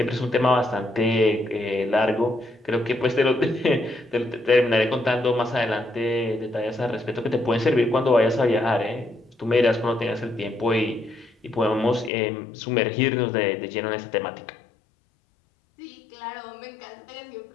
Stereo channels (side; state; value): right; drops out; at 12.1 s